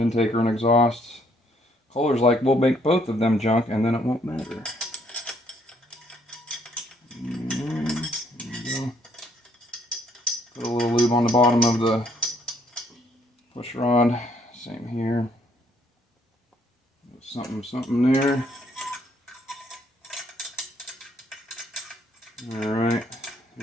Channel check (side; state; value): both; normal; correlation 0.67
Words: or an exhaust. Kohler's like, we'll make both of them junk and then it won't matter. There we go. Put a little lube on the bottom of the push rod. Same here. Something there. Alright,